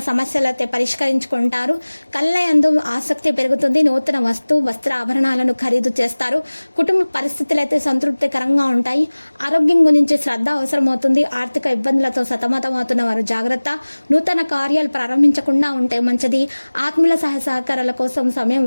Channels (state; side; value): inverted; both; correlation -1.00